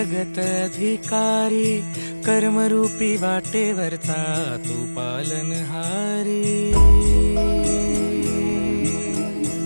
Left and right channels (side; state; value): both; inverted; correlation -1.00